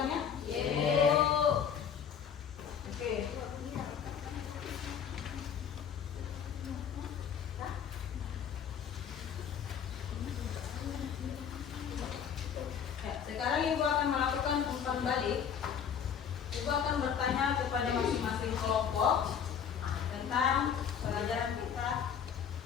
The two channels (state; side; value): quieter; right; 7.7 dB